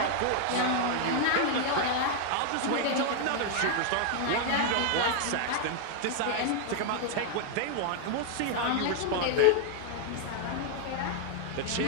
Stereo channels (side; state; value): both; different; correlation 0.00